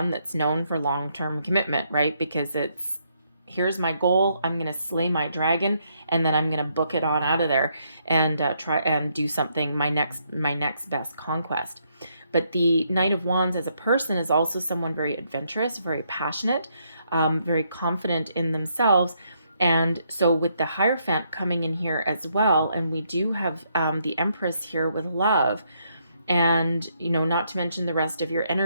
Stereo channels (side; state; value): both; inverted; correlation -0.74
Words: that's known for long-term commitment, right? Because it's, here's my goal, I'm going to slay my dragon, and then I'm going to book it on out of there and try and do something, my next best conquest. But the Knight of Wands as a person is also someone very adventurous, very passionate, very confident in themselves. And so with the Hierophant coming in here as well, and we do have the Empress here with love, and not to mention the rest of your